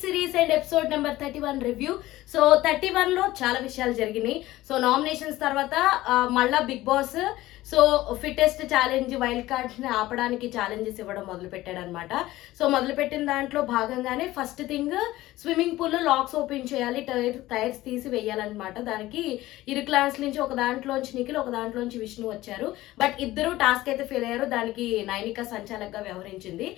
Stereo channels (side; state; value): right; quieter; 16.8 dB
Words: series and episode number 31 review. So 31 లో చాలా విషయాలు జరిగినాయి. సో నామినేషన్స్ తర్వాత మళ్ళా Bigg Boss so fittest challenge wild cards ని ఆపడానికి ఛాలెంజెస్ ఇవ్వడం మొదలు పెట్టాడు అనమాట. సో మొదలు పెట్టిన దాంట్లో భాగంగానే ఫస్ట్ థింగ్ స్విమ్మింగ్ పూల్ లో లాక్స్ ఓపెన్ చేయాలి, టైర్స్ తీసి వేయాలన్నమాట. దానికి ఇరు క్లాస్ నుంచి ఒక దాంట్లోంచి నిఖిల్, ఒక దాంట్లోంచి విష్ణు వచ్చారు. బట్ ఇద్దరు టాస్క్ అయితే ఫెయిల్ అయ్యారు. దానికి నైనిక సంచాలకగా వ్యవహరించింది.